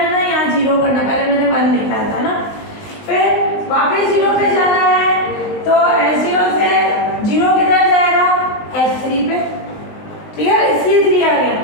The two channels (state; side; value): late; right; 19 ms